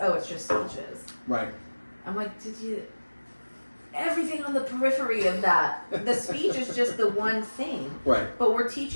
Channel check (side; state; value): both; inverted; correlation -1.00